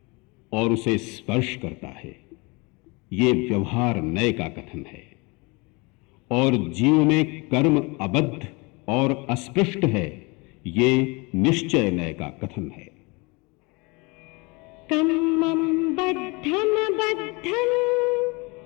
और उसे स्पर्श करता है, ये व्यवहार नय का कथन है, और जीव में कर्म अबद्ध और अस्पृष्ट है, ये निश्चय नय का कथन है। कम्मं बद्धं बद्धं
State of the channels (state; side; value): quieter; right; 27.5 dB